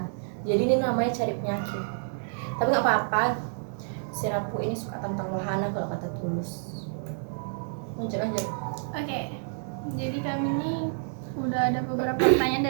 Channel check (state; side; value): silent; left; 59 dB below the other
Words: Jadi ini namanya cari penyakit. Tapi nggak apa-apa. Si Rapu ini suka tentang wahana kalau kata Tulus. Lanjut. Oke, jadi kami ini udah ada beberapa pertanyaan